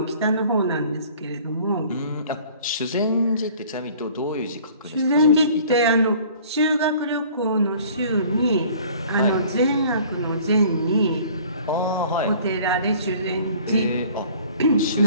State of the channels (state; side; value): inverted; both; correlation -0.51